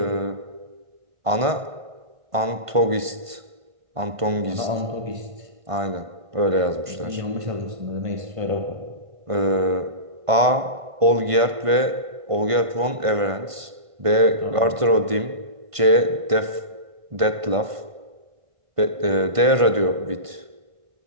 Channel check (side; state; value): left; late; 1.5 ms